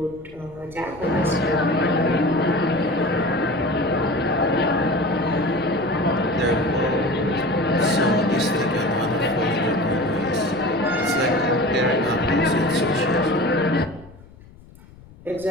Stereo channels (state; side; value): noise; left; rumble, 22 dB below the sound